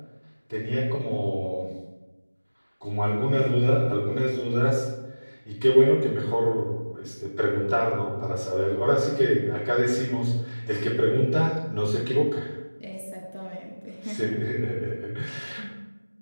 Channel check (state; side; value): inverted; both; correlation -1.00